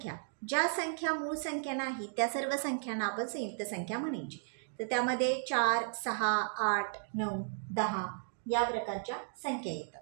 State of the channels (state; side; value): silent; left; digital silence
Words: ज्या संख्या मूळ संख्या नाही त्या सर्व संख्यांना आपण संयुक्त संख्या म्हणायची. तर त्यामध्ये 4, 6, 8, 9, 10 या प्रकारच्या संख्या